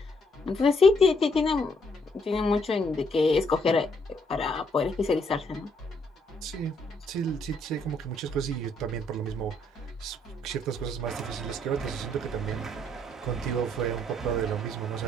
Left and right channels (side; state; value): both; normal; correlation 0.71